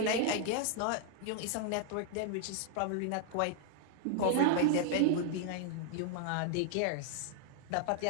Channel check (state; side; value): different; both; correlation 0.00